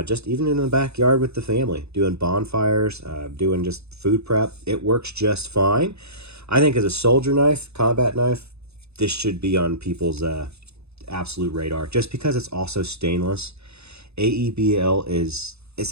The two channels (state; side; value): late; left; 0.79 ms